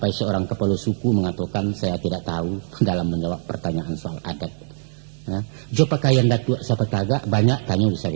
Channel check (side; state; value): left; silent; 64 dB below the other